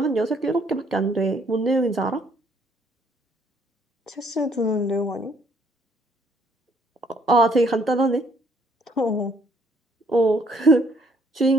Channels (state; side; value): normal; both; correlation 0.66